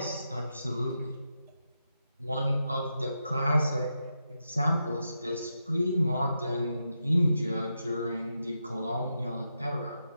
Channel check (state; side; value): inverted; both; correlation -0.86